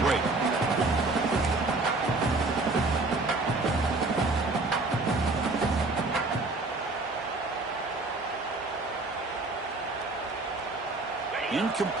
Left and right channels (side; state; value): left; quieter; 3.3 dB